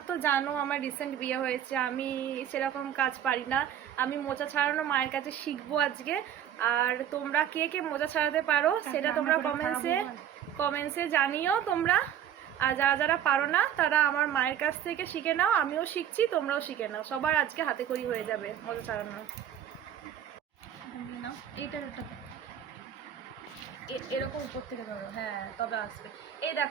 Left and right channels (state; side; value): quieter; left; 10.0 dB